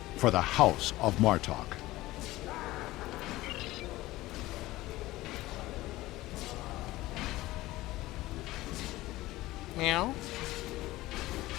for the House of Martok. Meow.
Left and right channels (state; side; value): quieter; right; 17.8 dB